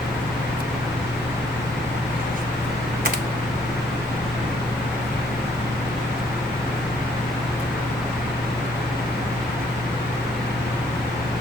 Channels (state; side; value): normal; both; correlation 0.66